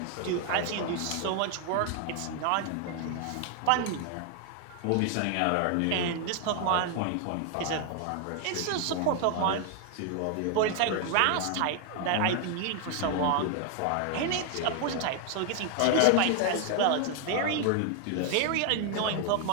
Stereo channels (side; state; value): both; different; correlation 0.00